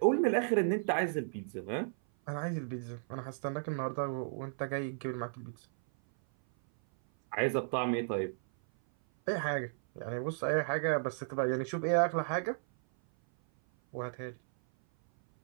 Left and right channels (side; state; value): left; silent; 55 dB below the other